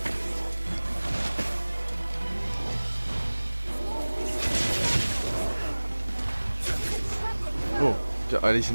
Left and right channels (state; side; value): inverted; both; correlation -1.00